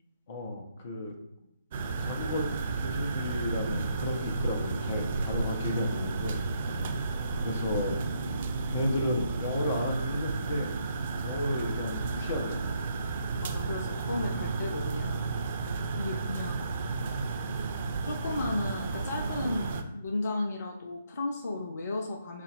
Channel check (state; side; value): inverted; both; correlation -0.73